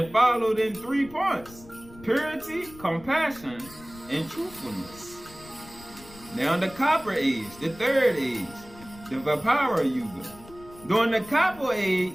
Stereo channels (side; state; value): left; noise; rumble, 20 dB below the sound